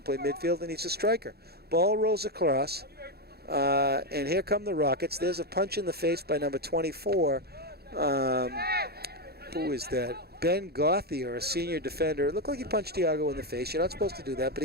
play midfield, and he's a striker. Ball rolls across, and here come the Rockets. There's a punch in the face by number 24. Who is that? Ben Gauthier, a senior defender. It looked like he punched Thiago in the face. You're not supposed to do that, but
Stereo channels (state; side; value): late; left; 0.46 ms